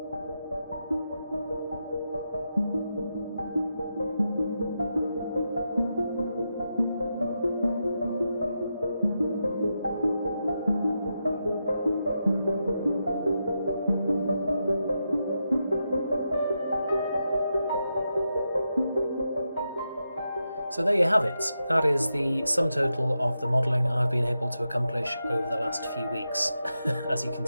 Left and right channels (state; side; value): inverted; both; correlation -0.86